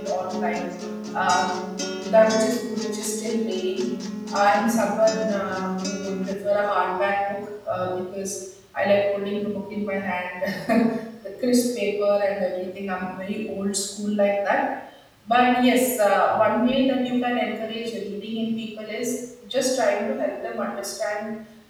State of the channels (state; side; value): identical; both; correlation 1.00